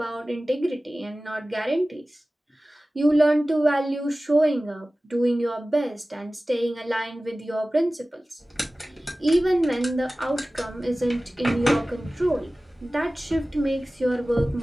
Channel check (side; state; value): both; normal; correlation 0.97